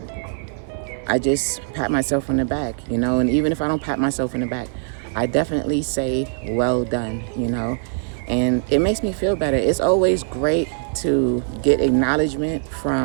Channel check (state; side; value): silent; left; digital silence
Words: I just pat myself on the back, and even if I don't pat myself on the back, I definitely say, well done, and it makes me feel better. It's always great to get acknowledgement